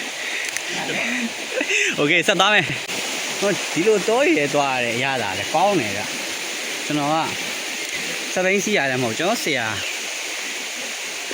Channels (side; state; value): both; identical; correlation 1.00